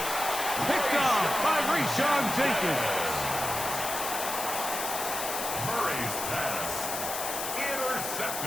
Picked off by Rashawn Jenkins. Murray's pass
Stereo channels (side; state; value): left; noise; hiss, 4 dB below the sound